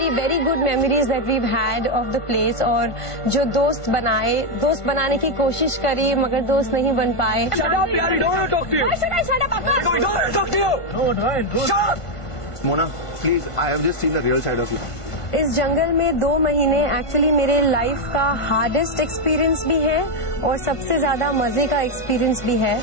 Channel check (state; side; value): late; right; 1.5 ms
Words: very good memories that weave had of the place. और जो दोस्त बनाए, दोस्त बनाने की कोशिश करी मगर दोस्त नहीं बन पाए। Mona please, I have just seen the real side of you. इस जंगल में 2 महीने एक्चुअली मेरे लाइफ का हार्डेस्ट एक्सपीरियंस भी है और सबसे ज्यादा मजे का एक्सपीरियंस भी है।